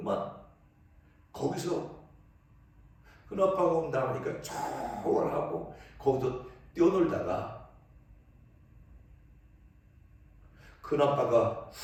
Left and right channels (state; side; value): identical; both; correlation 1.00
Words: 거기서 큰아빠가 온다 하니까 쫙 하고 거기서 뛰어놀다가 큰아빠가